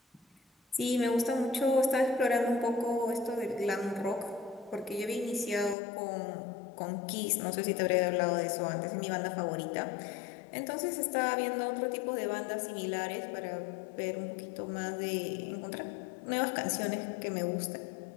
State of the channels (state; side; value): drops out; right; at 5.8 s